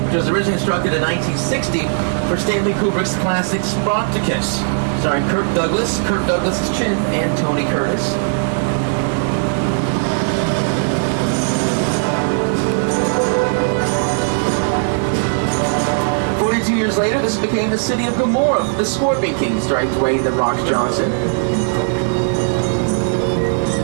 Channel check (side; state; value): left; silent; 55 dB below the other